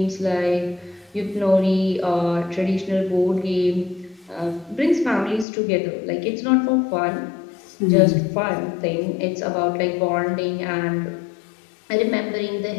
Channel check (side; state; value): right; drops out; at 5.5 s